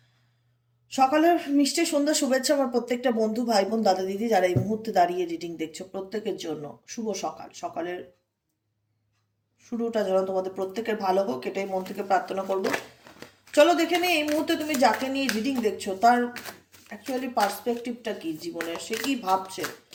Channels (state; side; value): identical; both; correlation 1.00